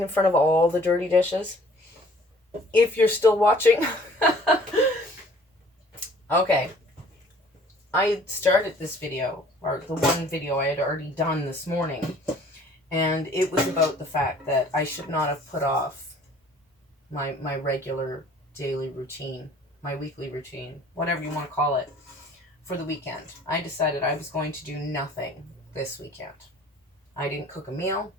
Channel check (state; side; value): normal; both; correlation 0.54